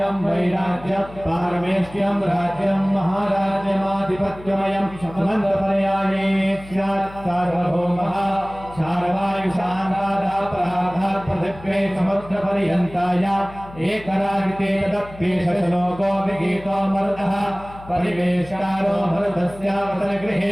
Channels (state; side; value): noise; left; hum, 18 dB below the sound